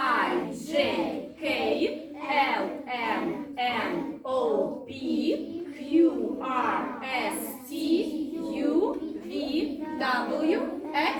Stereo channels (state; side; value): identical; both; correlation 1.00